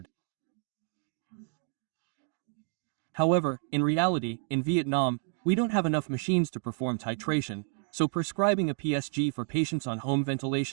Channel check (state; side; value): silent; left; 56 dB below the other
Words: However, in reality, in Vietnam, we don't have enough machines to perform titration, So prescribing a PSG for patients on home